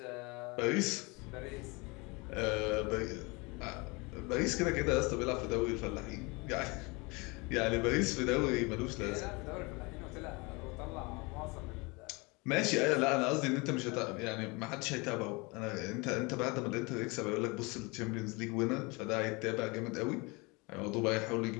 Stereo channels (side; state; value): right; quieter; 27.1 dB